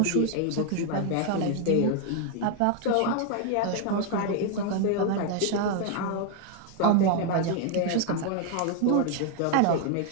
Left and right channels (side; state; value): both; different; correlation 0.00